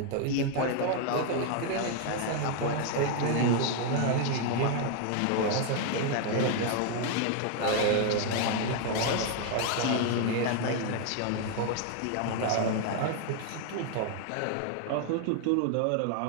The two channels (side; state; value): both; different; correlation 0.00